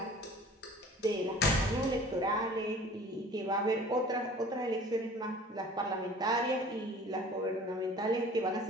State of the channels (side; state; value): both; normal; correlation 0.46